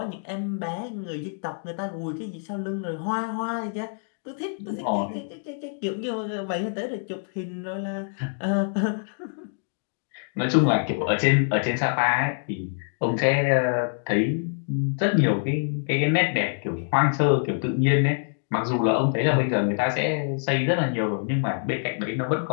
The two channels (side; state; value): right; silent; digital silence